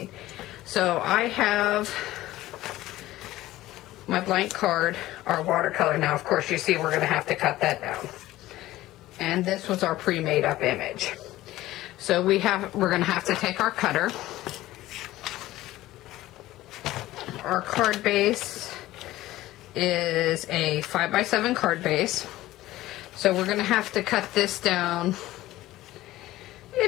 So I have my blank card, our watercolor. Now, of course, you see we're going to have to cut that down. And this was our pre-made up image. So we're going to have to take our cutter. Our card base is a 5x7 card base. So we're going to have to cut this down.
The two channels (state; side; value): quieter; right; 16.1 dB